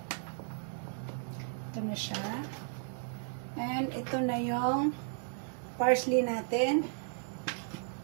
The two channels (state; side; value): silent; left; 55 dB below the other